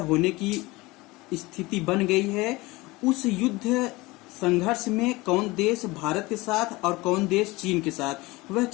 होने की स्थिति बन गई है। उस युद्ध संघर्ष में कौन देश भारत के साथ और कौन देश चीन के साथ, वह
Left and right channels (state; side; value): quieter; right; 21.8 dB